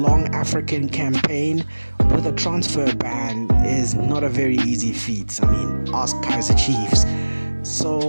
African campaign with a transfer ban is not a very easy feat. I mean, ask Kaizer Chiefs.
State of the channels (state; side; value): inverted; both; correlation -1.00